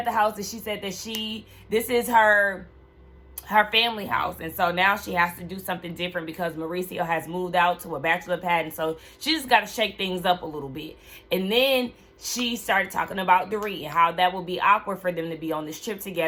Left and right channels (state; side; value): identical; both; correlation 1.00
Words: the house, and she said that this is her family house, and so now she has to do something different because Mauricio has moved out to a bachelor pad, and so she just got to shake things up a little bit. And then she started talking about Dorit and how that would be awkward for them to be on this trip